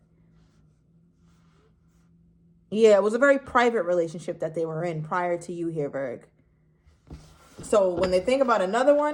Yeah, it was a very private relationship that they were in prior to you here, Virg. So when they think about another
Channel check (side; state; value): both; identical; correlation 1.00